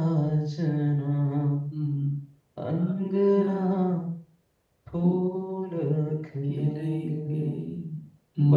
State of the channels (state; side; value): identical; both; correlation 1.00